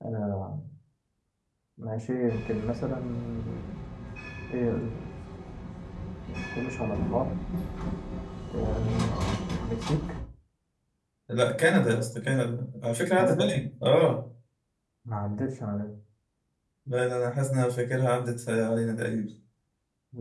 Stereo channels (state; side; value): identical; both; correlation 1.00